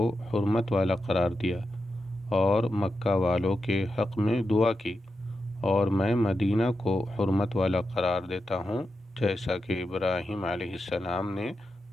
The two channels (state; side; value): normal; both; correlation 0.88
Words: حرمت والا قرار دیا اور مکہ والوں کے حق میں دعا کی، اور میں مدینہ کو حرمت والا قرار دیتا ہوں جیسا کہ ابراہیم علیہ السلام نے